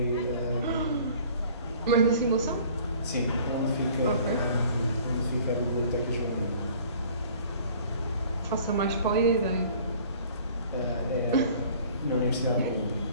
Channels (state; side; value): inverted; both; correlation -0.51